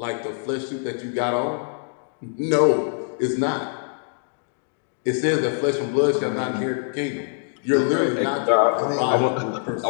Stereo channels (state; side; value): silent; right; 63 dB below the other